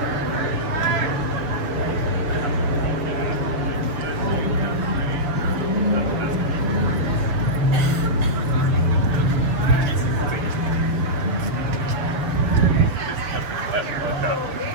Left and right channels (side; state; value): left; late; 6.9 ms